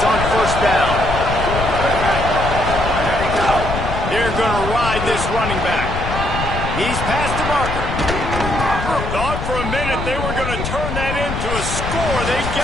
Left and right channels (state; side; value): noise; left; rumble, 4 dB below the sound